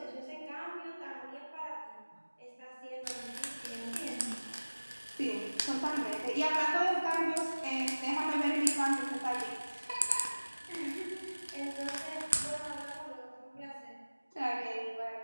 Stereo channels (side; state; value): both; inverted; correlation -1.00